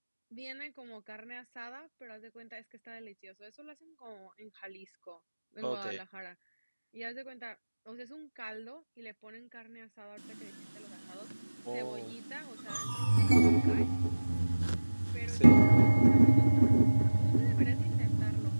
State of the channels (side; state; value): both; inverted; correlation -1.00